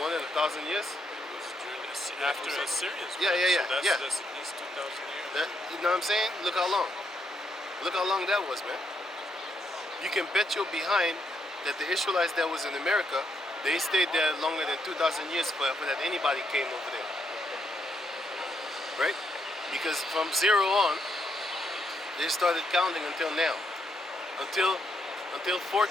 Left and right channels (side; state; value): both; normal; correlation 0.77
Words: than 1,000 years. After Assyrians. Yeah, yeah, yeah, So that's, yeah. that's at least 2,000 years. That, you know what I'm saying? Look how long. Look how long that was, man. You can bet your behind that the Israelites that was in America, they stayed there longer than 2,000 years for that anybody came over there. Right? Because from zero on, they started counting until now. Until